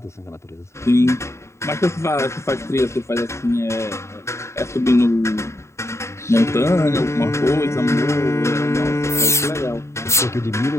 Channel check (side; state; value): right; late; 0.14 ms